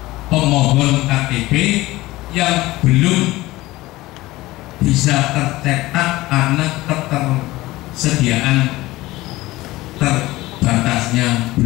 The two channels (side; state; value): right; quieter; 18.5 dB